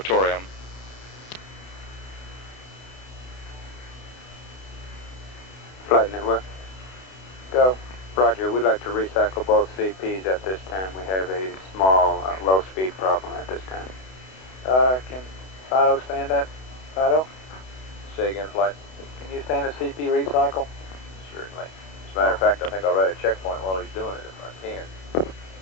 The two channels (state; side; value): late; right; 32 ms